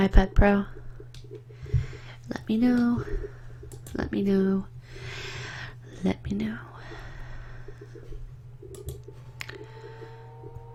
Pro? Let me know. Let me know. Let me know.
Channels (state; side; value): identical; both; correlation 1.00